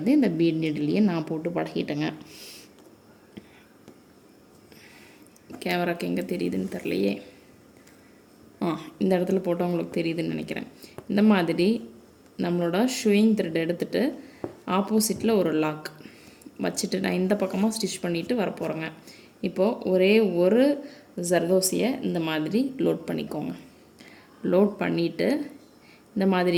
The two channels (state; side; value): identical; both; correlation 1.00